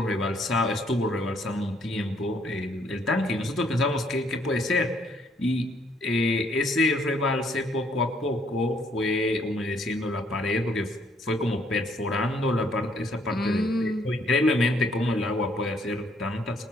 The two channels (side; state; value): both; normal; correlation 0.67